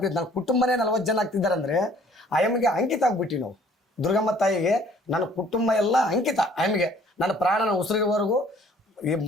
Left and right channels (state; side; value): normal; both; correlation 0.57